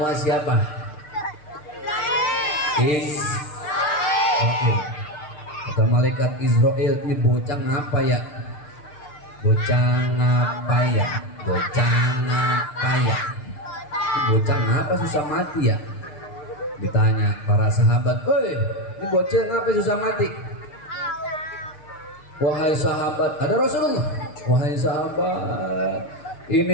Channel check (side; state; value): right; late; 6.7 ms